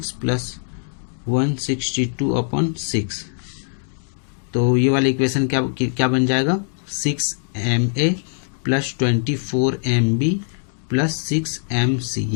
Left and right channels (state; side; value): silent; right; digital silence